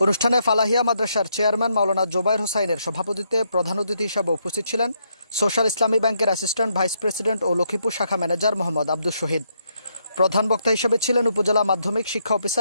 অনুষ্ঠানে ফালাহিয়া মাদ্রাসার চেয়ারম্যান মাওলানা জোবায়ের হোসাইনের সভাপতিত্বে প্রধান অতিথি হিসেবে উপস্থিত ছিলেন সোশ্যাল ইসলামী ব্যাংকের অ্যাসিস্ট্যান্ট ভাইস প্রেসিডেন্ট ও লক্ষ্মীপুর শাখা ম্যানেজার মোহাম্মদ আব্দুল শহীদ। প্রধান বক্তা হিসেবে ছিলেন উপজেলা মাধ্যমিক শিক্ষা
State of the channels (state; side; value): inverted; both; correlation -0.76